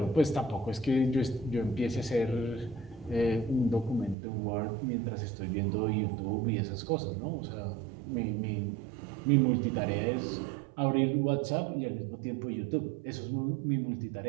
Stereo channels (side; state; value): left; drops out; at 4.2 s